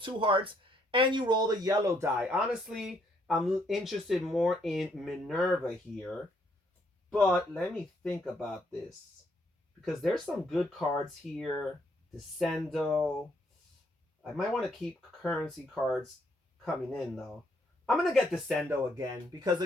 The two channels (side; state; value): both; normal; correlation 0.71